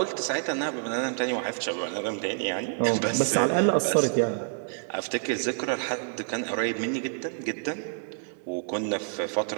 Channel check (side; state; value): left; silent; digital silence